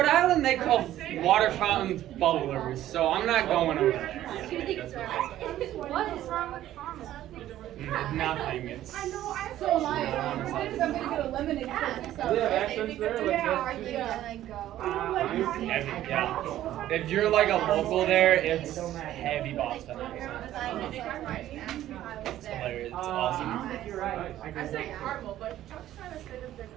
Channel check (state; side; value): quieter; left; 13.1 dB